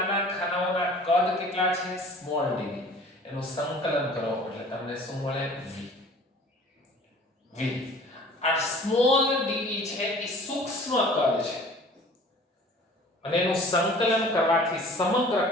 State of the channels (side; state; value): both; normal; correlation 0.47